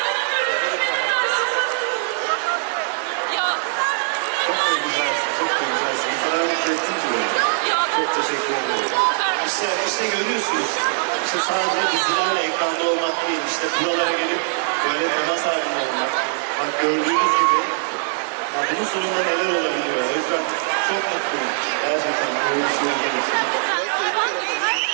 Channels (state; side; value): silent; left; digital silence